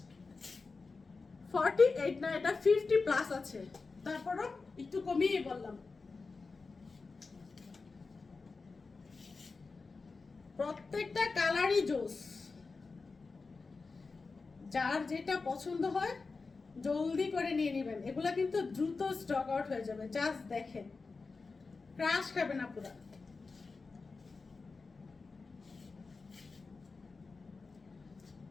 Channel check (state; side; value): quieter; right; 4.2 dB